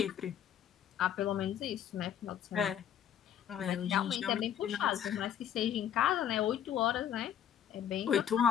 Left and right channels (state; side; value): quieter; right; 9.6 dB